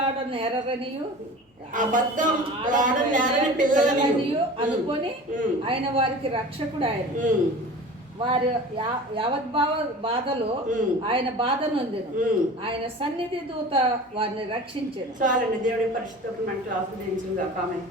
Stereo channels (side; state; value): both; normal; correlation 0.38